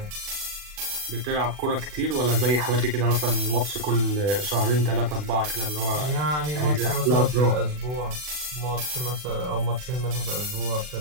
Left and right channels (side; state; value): left; late; 40 ms